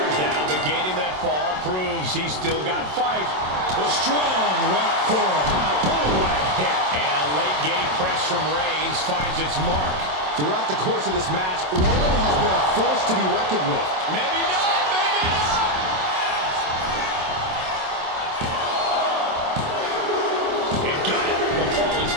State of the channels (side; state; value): left; late; 27 ms